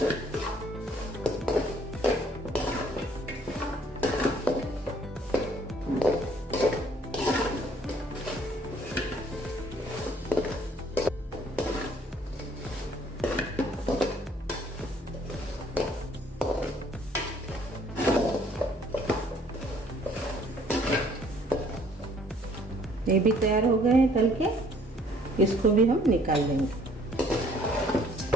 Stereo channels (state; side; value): normal; both; correlation 0.61